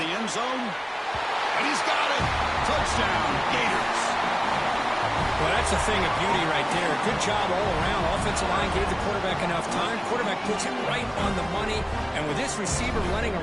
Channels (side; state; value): both; identical; correlation 1.00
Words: end zone. And he's got it. Touchdown, Gators. Well, that's a thing of beauty right there. Good job all around. Offensive line gave the quarterback enough time. Quarterback puts it right on the money. And with this receiver running a